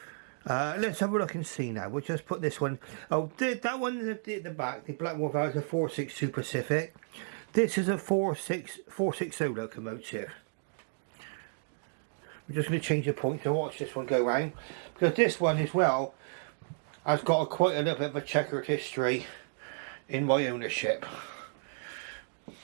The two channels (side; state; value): left; silent; digital silence